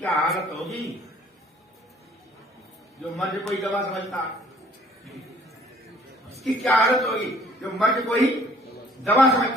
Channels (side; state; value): both; normal; correlation 0.57